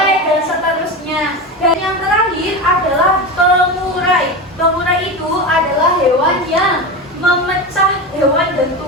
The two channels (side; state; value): both; normal; correlation 0.22